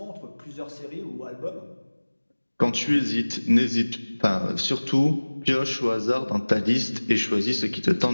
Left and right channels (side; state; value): both; inverted; correlation -1.00